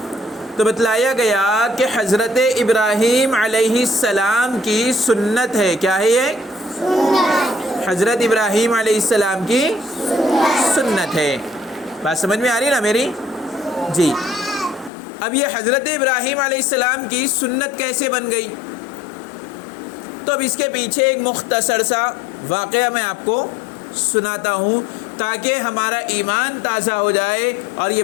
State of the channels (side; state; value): right; drops out; at 14.9 s